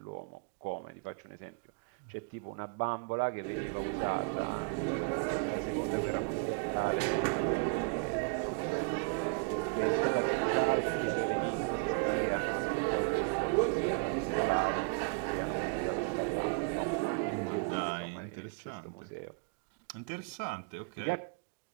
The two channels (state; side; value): quieter; left; 35.8 dB